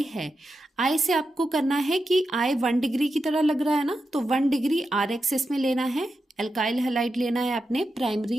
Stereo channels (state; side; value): normal; both; correlation 0.88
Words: है, आई से आपको करना है कि आई 1 डिग्री की तरह लग रहा है ना, तो 1 डिग्री आर एक्सिस में लेना है। एल्काइल हैलाइड लेना है आपने,